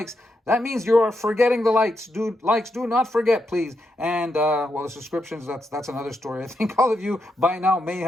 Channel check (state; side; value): normal; both; correlation 0.83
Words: That means you are forgetting the likes. Do not forget, please. And well, the subscriptions, that's another story. I think all of you by now may